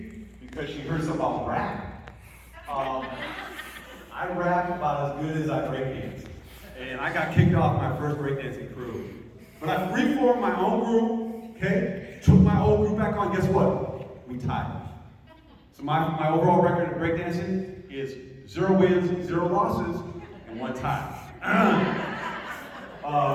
because she heard something about rap. I rap about as good as I breakdance. And I got kicked off my first breakdancing crew. But I reformed my own group, okay? Took my old group back on, guess what? We tied. So my overall record of breakdancing is 0 wins, 0 losses, and 1 tie.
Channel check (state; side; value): identical; both; correlation 1.00